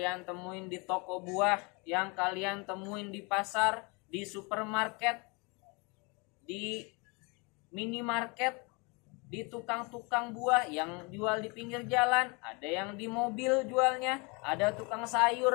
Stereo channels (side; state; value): right; quieter; 29.8 dB